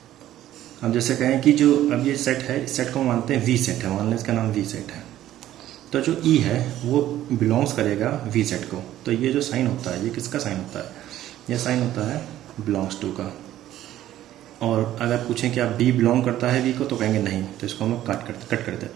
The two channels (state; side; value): quieter; left; 13.1 dB